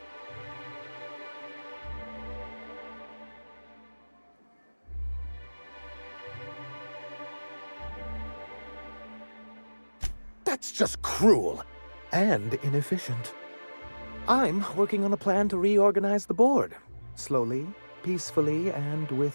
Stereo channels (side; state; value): both; inverted; correlation -1.00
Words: That's just cruel and inefficient. I'm working on a plan to reorganize the board. Slowly, peacefully, and